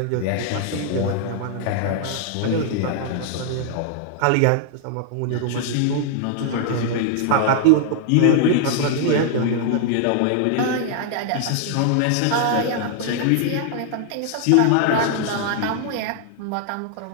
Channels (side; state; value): both; different; correlation 0.00